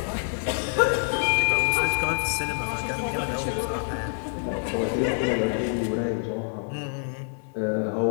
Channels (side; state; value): right; silent; 57 dB below the other